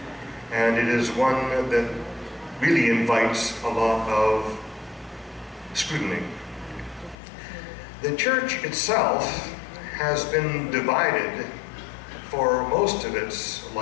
and it is one that really invites a lot of scrutiny. The church itself has been divided for most of its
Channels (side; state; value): right; drops out; at 7.2 s